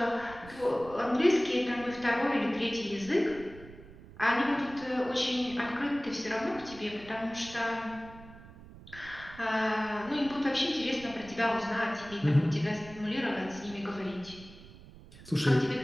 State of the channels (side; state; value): right; noise; rumble, 18 dB below the sound